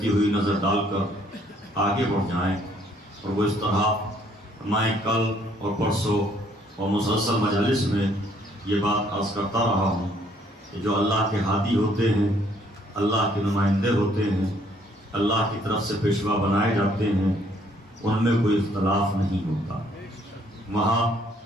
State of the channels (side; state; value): both; normal; correlation 0.65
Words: ہوئی نظر ڈال کر آگے بڑھ جائیں، اور وہ اس طرح میں کل اور پرسوں اور مسلسل مجالس میں یہ بات عرض کرتا رہا ہوں کہ جو اللہ کے ہادی ہوتے ہیں، اللہ کے نمائندے ہوتے ہیں، اللہ کی طرف سے پیشوا بنائے جاتے ہیں، ان میں کوئی اختلاف نہیں ہوتا. وہاں